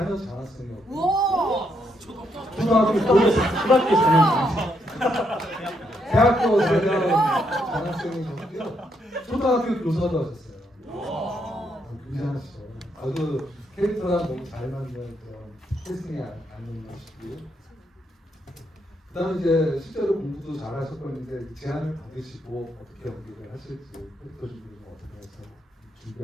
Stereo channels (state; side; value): normal; both; correlation 0.76